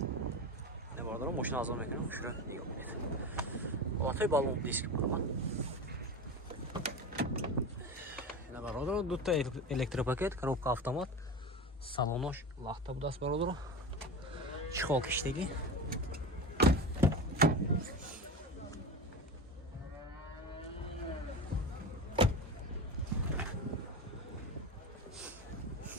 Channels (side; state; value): both; normal; correlation 0.27